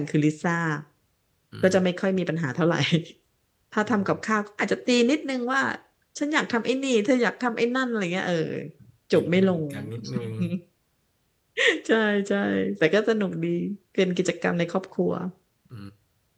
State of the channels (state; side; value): identical; both; correlation 1.00